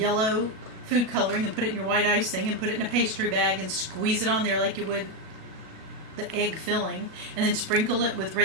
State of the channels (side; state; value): left; late; 37 ms